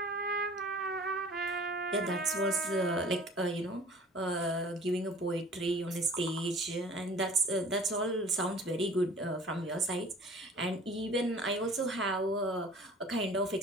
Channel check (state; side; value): normal; both; correlation 0.47